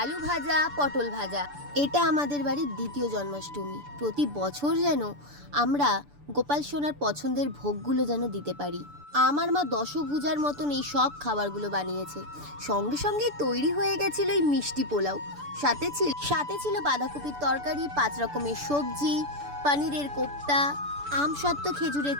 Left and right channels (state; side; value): late; left; 6.9 ms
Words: ভাজা, পটল ভাজা। এটা আমাদের বাড়ির দ্বিতীয় জন্মাষ্টমী। প্রতি বছর যেন আমরা গোপাল সোনার পছন্দের ভোগগুলো যেন দিতে পারি। আমার মা দশভুজার মতন এই সব খাবারগুলো বানিয়েছে। সঙ্গে সঙ্গে তৈরি হয়ে গেছিল এই মিষ্টি পোলাও। সাথে ছিল বাঁধাকপির তরকারি, 5 রকমের সবজি, পনিরের কোপ্তা, আমসত্ত্ব খেজুরের